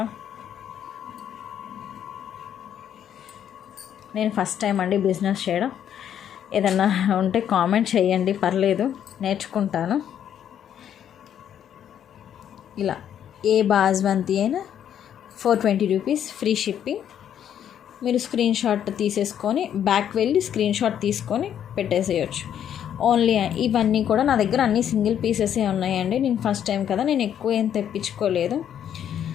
నేను ఫస్ట్ టైం అండి బిజినెస్ చేయడం. ఏదన్నా ఉంటే కామెంట్ చేయండి, పర్లేదు, నేర్చుకుంటాను. ఇలా ఏ బాస్మతి అయినా ₹420 ఫ్రీ షిప్పింగ్. మీరు స్క్రీన్ షాట్ తీసేసుకొని బ్యాక్ వెళ్ళి స్క్రీన్ షాట్ తీసుకొని పెట్టేసేయచ్చు. ఓన్లీ ఇవన్నీ కూడా నా దగ్గర అన్ని సింగిల్ పీసెసే ఉన్నాయండి. నేను ఫస్ట్ టైం కదా, నేను ఎక్కువ ఏం తెప్పించుకోలేదు.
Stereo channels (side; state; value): right; quieter; 9.6 dB